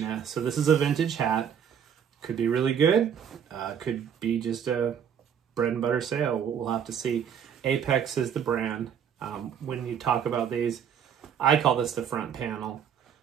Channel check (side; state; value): left; quieter; 8.2 dB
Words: So this is a vintage hat. Could be really good. Could be just a bread and butter sale. We'll have to see. Apex is the brand. When you talk about these, I call this the front panel.